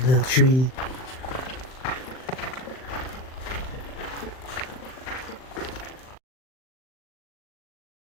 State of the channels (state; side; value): late; right; 39 ms